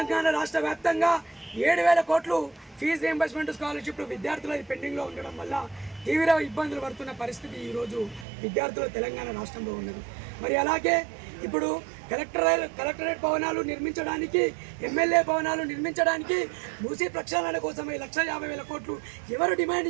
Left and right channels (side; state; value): left; drops out; at 8.2 s